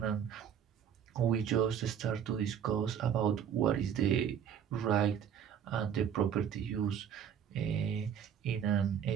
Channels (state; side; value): quieter; left; 8.5 dB